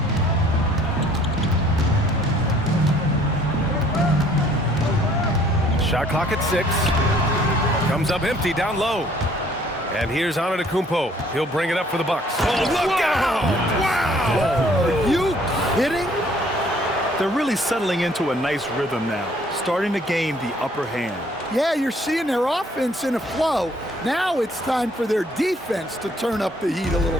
Shot clock at 6. Comes up empty down low. And here's Antetokounmpo. He'll bring it up for the Bucks. Oh, look out! Wow! Are you kidding? They're really settling into a nice rhythm now, starting to gain the upper hand. Yeah, you're seeing their offense in a flow. Now it's time for their defense to turn up the heat a little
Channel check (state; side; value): normal; both; correlation 0.60